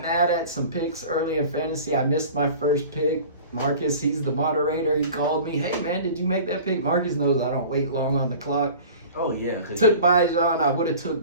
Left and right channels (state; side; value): inverted; both; correlation -0.41